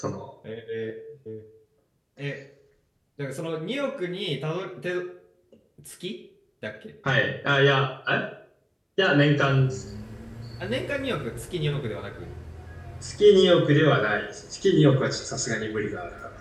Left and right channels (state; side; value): identical; both; correlation 1.00